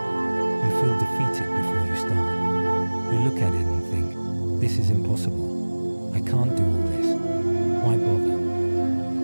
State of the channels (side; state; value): both; inverted; correlation -1.00